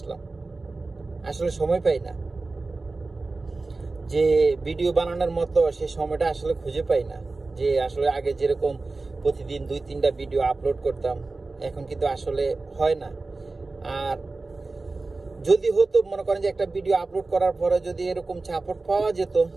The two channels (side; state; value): left; quieter; 3.5 dB